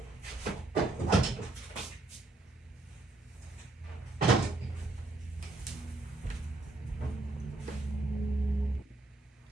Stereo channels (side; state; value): left; quieter; 3.1 dB